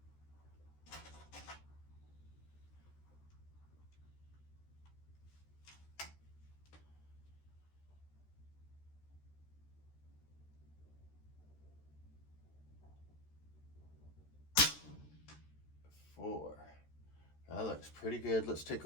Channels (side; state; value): right; late; 13 ms